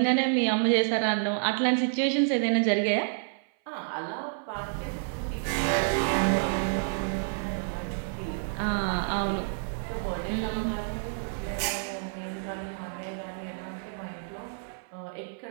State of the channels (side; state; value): left; silent; 58 dB below the other